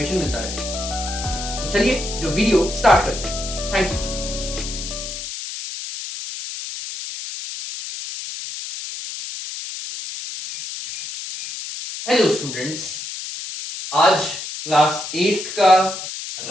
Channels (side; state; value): left; noise; hiss, 8 dB below the sound